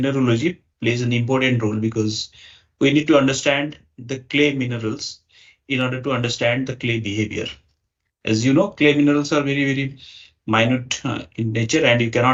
plays an important role, because we need to understand the clay minerals in order to understand the clay behavior. As you know, clay minerals are very minute in nature and you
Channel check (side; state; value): both; identical; correlation 1.00